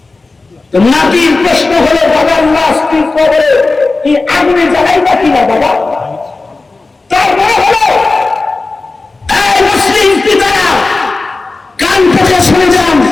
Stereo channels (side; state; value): right; quieter; 3.6 dB